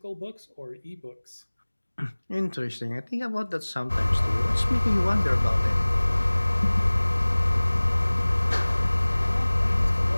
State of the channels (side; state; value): both; inverted; correlation -1.00